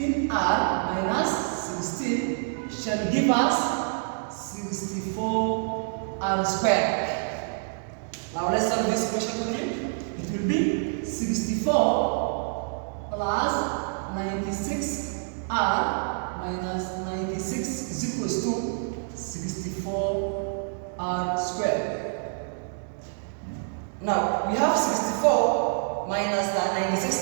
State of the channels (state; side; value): silent; left; digital silence